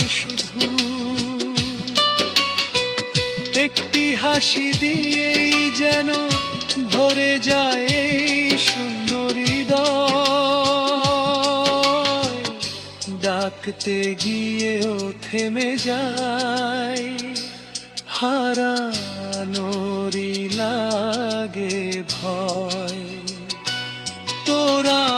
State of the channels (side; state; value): both; identical; correlation 1.00